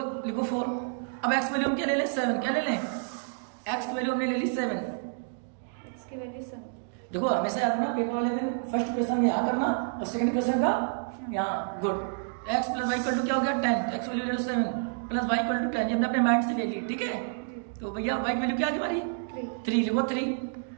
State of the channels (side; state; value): left; silent; digital silence